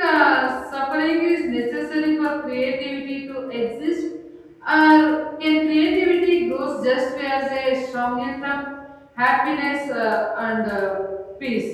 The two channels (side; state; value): both; identical; correlation 1.00